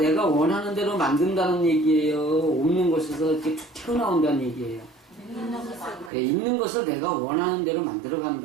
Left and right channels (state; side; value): drops out; left; at 6.1 s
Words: 원하는 대로 만든다는 얘기예요? 없는 것에서 이렇게 툭 튀어나온다는 얘기예요? 있는 것을 내가 원하는 대로